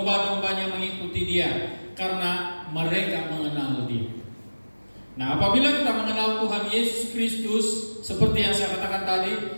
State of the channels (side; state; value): both; inverted; correlation -1.00